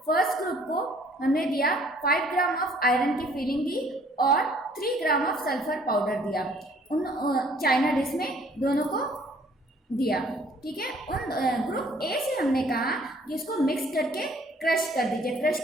First group को हमने दिया 5 ग्राम ऑफ आयरन की फिलिंग दी और 3 ग्राम ऑफ सल्फर पाउडर दिया, उन चाइना डिश में दोनों को दिया। ठीक है, उन ग्रुप ए से हमने कहा कि इसको मिक्स करके क्रश कर दीजिए। क्रश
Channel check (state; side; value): normal; both; correlation 0.59